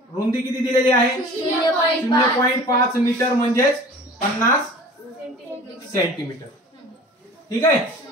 रुंदी किती दिलेली आहे? 0.5 मीटर म्हणजे 50 सेंटीमीटर. ठीक आहे.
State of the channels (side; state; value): both; normal; correlation 0.43